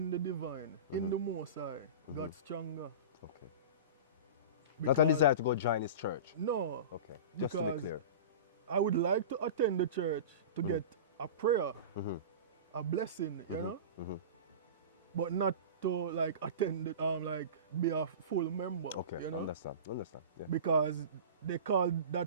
the divine, in the Most High, got stronger. Okay. Not a desire to go join his church? No. Okay, just to be clear. I would like to attend the church to get a prayer, a blessing, you know? But not to like attend it, like be a full member. Okay, you know? understand. Yeah. Because they call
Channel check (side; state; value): both; inverted; correlation -0.31